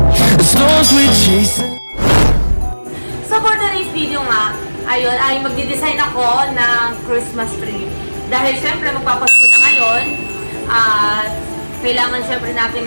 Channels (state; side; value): inverted; both; correlation -1.00